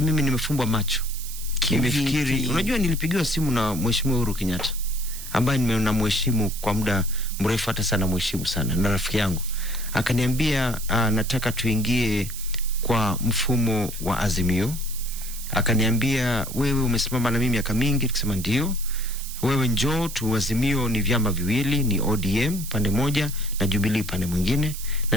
nimefumbwa macho. Nimefikiri, unajua nilipigiwa simu na Mheshimiwa Uhuru Kenyatta ambaye ninamheshimu kwa muda mrefu, hata sana mheshimu sana, na rafiki yangu. Akaniambia nataka tuingie kwa mfumo wa Azimio. Akaniambia wewe umesimama na mimi miaka mingi. Nikasema ndio. wewe njoo tu. Azimio ni vyama viwili, ni ODM pande moja na Jubilee pande mwingine.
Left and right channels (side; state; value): right; noise; hiss, 11 dB below the sound